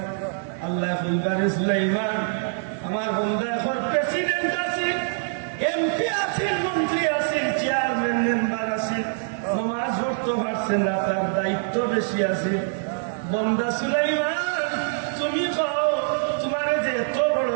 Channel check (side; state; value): left; silent; 62 dB below the other